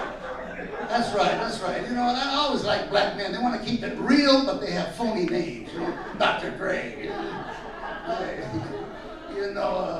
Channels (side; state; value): both; identical; correlation 1.00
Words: That's right. You know, I always like black men. They want to keep it real, but they have phony names. You know, Dr. Dre.